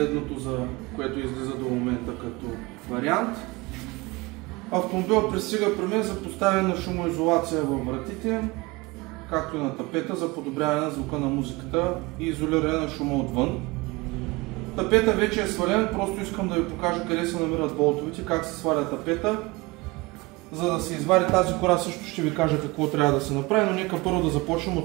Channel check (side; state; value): left; quieter; 23.5 dB